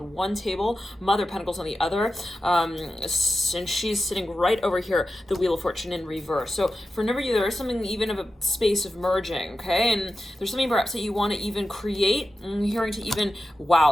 one table, Mother of Pentacles on the other, and she's sitting right over here, the Wheel of Fortune in reverse. So for a number of you, there is something even of a space of merging, okay? And there's something perhaps that you want to even create. I'm hearing to even,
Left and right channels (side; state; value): both; normal; correlation 0.92